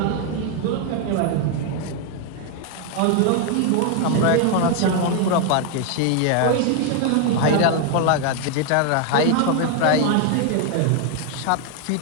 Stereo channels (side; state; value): both; different; correlation 0.00